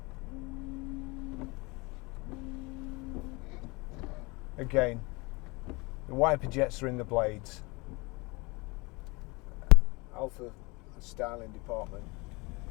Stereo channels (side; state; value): right; quieter; 26.1 dB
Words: Again, the wiper jets are in the blades. Alfa styling department.